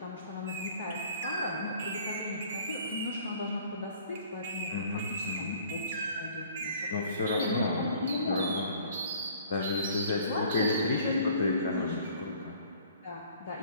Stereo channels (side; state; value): both; inverted; correlation -0.53